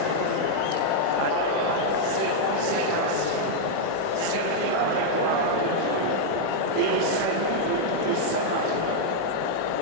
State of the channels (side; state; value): both; different; correlation -0.01